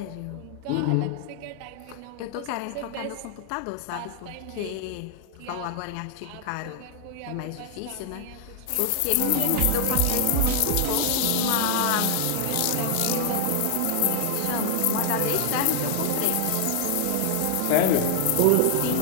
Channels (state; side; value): different; both; correlation 0.00